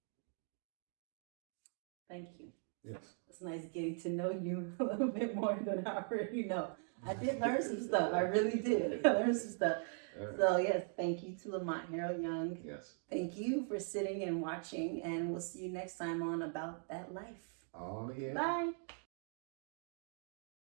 Thank you. Yes. It's nice getting to know you a little bit more than I already know. I did learn some stuff. I really did. I learned some stuff. Right. So yes, thank you to Lamont Harold Young. Yes. Thank you for sitting and watching, and we'll see you next time on About That Life. Oh yeah. Bye.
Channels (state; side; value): silent; left; 51 dB below the other